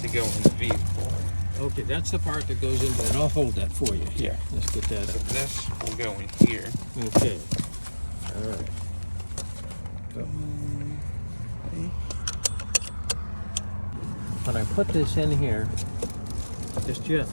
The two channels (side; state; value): both; inverted; correlation -1.00